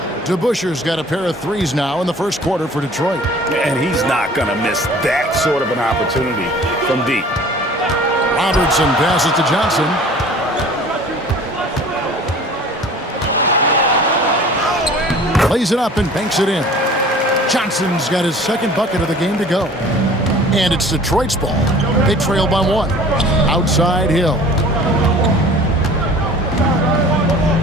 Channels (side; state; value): both; normal; correlation 0.46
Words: DeBusschere's got a pair of 3s now in the first quarter for Detroit. And he's not going to miss that sort of an opportunity from deep. Robertson passes to Johnson. Lays it up and banks it in. Johnson's got his second bucket of the game to go. And it's Detroit's ball. They trail by 1. Outside Hill.